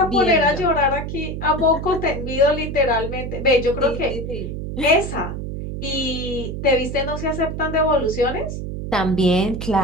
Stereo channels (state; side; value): noise; right; hum, 6 dB below the sound